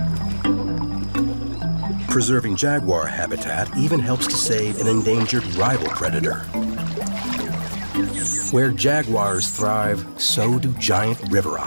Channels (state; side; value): inverted; both; correlation -1.00